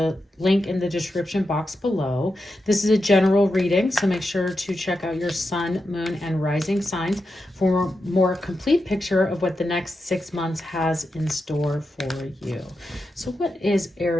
link in the description box below. This is a general reading, so make sure to check out your sun, moon, and rising signs for a more complete picture of what the next 6 months has in store for you. So what is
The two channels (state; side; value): normal; both; correlation 0.88